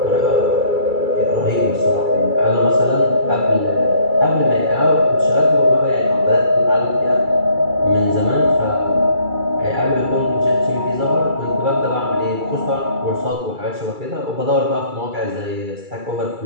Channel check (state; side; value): late; left; 2.3 ms